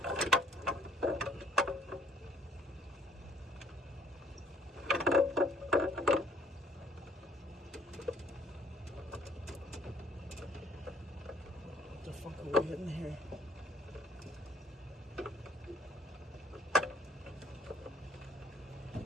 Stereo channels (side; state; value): both; normal; correlation 0.60